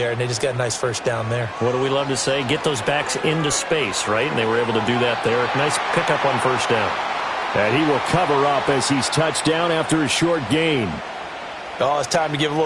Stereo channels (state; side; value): identical; both; correlation 1.00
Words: and they just got a nice first down there. What do we love to say? Get those backs into space, right? And they were able to do that there. Nice pickup on first down. And he will cover up as he's touched down after a short gain. Oh, it's time to give a